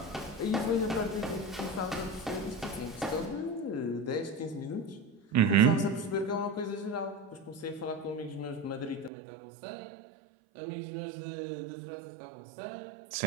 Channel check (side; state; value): left; drops out; at 9.1 s